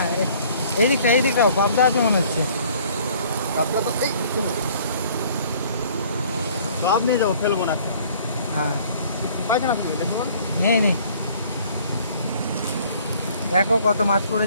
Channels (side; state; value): both; inverted; correlation -0.56